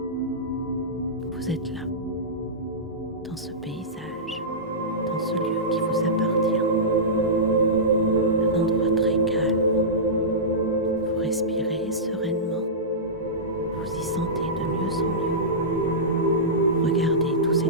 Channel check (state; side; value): normal; both; correlation -0.16